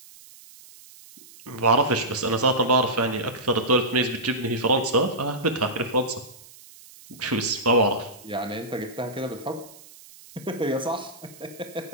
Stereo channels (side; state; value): right; noise; hiss, 21 dB below the sound